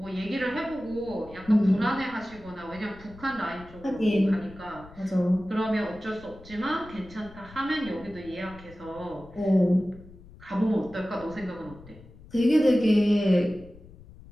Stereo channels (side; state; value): left; noise; rumble, 20 dB below the sound